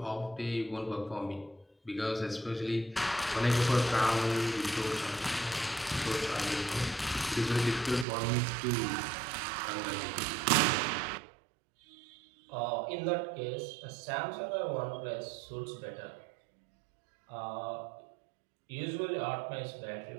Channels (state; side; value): drops out; left; at 8.1 s